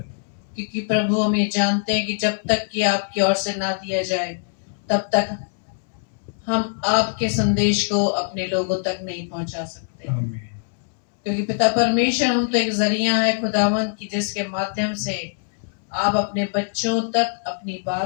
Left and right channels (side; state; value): right; silent; 64 dB below the other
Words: क्योंकि प्रभु, हम ये जानते हैं कि जब तक कि आपकी ओर से ना दिया जाए, तब तक हम आपके संदेश को अपने लोगों तक नहीं पहुंचा सकते। आमीन। क्योंकि पिता परमेश्वर, हम तो एक जरिया है खुदावन की, जिसके माध्यम से आप अपने बच्चों तक अपनी